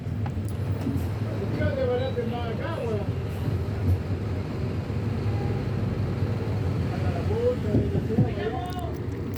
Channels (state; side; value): identical; both; correlation 1.00